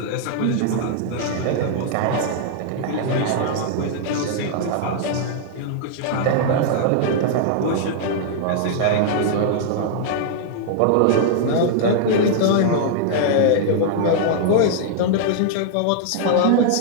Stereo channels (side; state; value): both; different; correlation -0.01